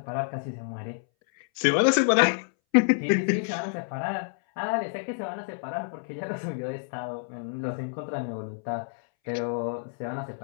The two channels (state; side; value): silent; right; 59 dB below the other